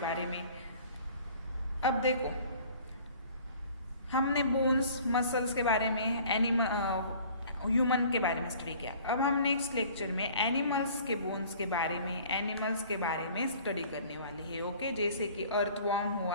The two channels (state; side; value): inverted; both; correlation -0.50